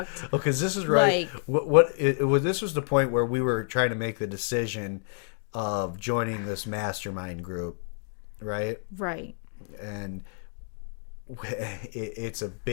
Oh, because this is right. like, This was the point where we were trying to make the decision of joining this mastermind group, right? right. And it's a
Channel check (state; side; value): silent; right; 59 dB below the other